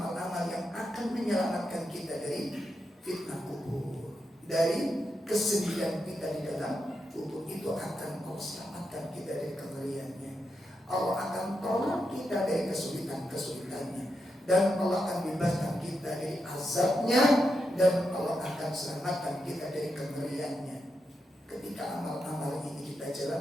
yang akan menyelamatkan kita dari fitnah kubur, dari kesedihan kita di dalam kubur. Itu akan selamatkan kita dari kengeriannya. Allah akan tolong kita dari kesulitan-kesulitannya, dan Allah akan bebaskan kita dari azabnya, dan Allah akan selamatkan kita dari kengeriannya ketika amal-amal ini kita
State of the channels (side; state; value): both; normal; correlation 0.85